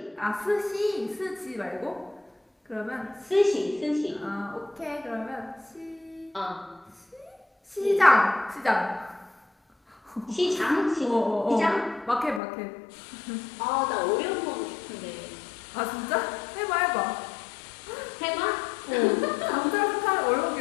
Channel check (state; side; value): drops out; right; at 12.4 s